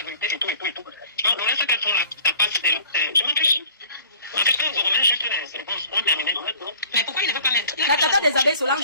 vérité et tout. Donc, le reste qu'elles font là, t'as pas je m'en fiche. En fait, quand vous revenez juste les réponses, on termine. Mais pourquoi il ne veut pas mettre? La tata des abeilles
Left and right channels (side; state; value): both; inverted; correlation -0.51